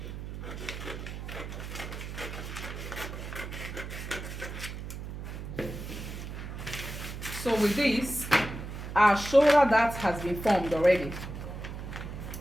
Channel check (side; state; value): right; noise; hum, 8 dB below the sound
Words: So with this, our shoulder that has been formed already.